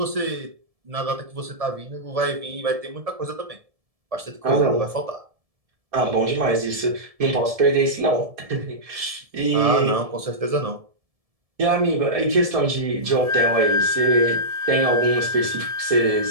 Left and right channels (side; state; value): left; late; 1.7 ms